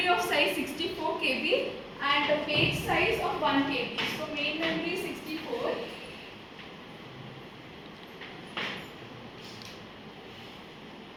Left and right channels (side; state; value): both; identical; correlation 1.00